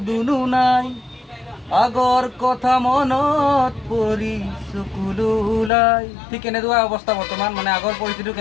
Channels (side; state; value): right; drops out; at 5.7 s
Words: দুনুহ নাই, আগৰ কথা মনত পৰি চকুলো ওলাই। ঠিক এনেকুৱা অৱস্থা বৰ্তমান। আগৰ পৰিস্থিতিটো